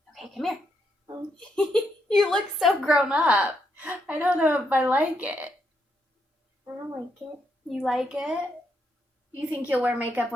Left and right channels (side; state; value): both; normal; correlation 0.78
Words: Okay, come here. You look so grown up. I don't know if I like it. I don't like it. You like it? You think you'll wear makeup